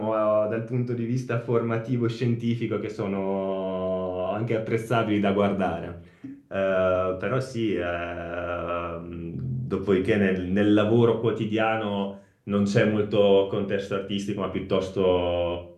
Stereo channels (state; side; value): identical; both; correlation 1.00